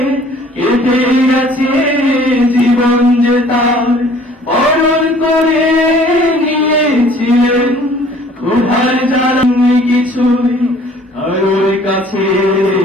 কেটে গেছে জীবন যে তার বরণ করে নিয়েছিলেন ক্ষুধার জ্বালা। কিছুই কারোর কাছে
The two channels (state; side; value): normal; both; correlation 0.54